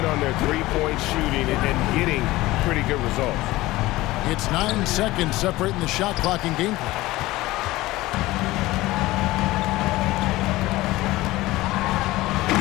on their three-point shooting and getting pretty good results. It's 9 seconds separating the shot clock and gameplay.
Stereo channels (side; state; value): right; quieter; 18.4 dB